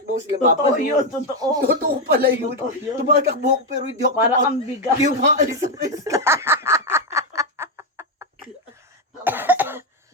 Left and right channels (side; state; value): both; normal; correlation 0.05